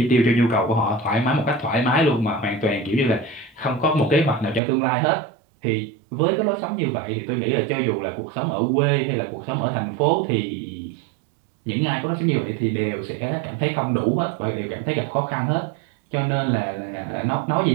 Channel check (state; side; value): drops out; left; at 4.6 s